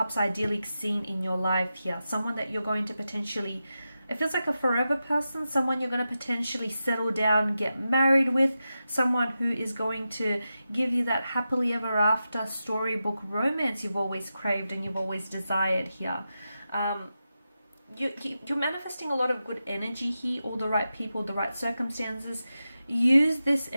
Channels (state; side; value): inverted; both; correlation -0.91